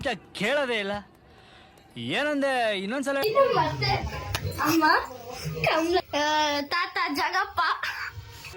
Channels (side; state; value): both; identical; correlation 1.00